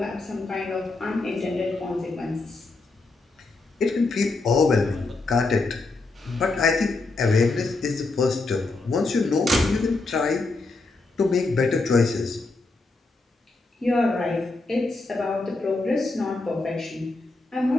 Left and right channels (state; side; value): quieter; right; 3.4 dB